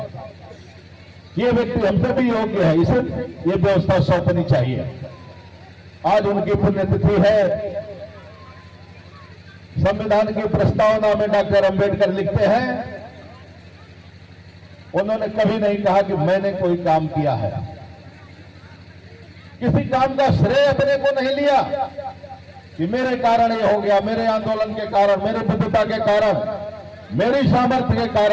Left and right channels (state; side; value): identical; both; correlation 1.00